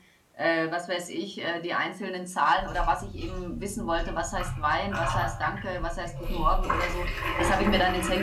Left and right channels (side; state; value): both; identical; correlation 1.00